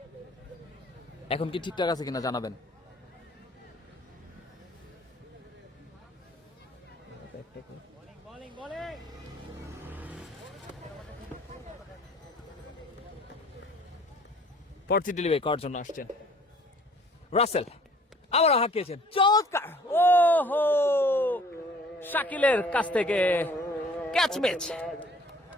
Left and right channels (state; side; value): normal; both; correlation 0.54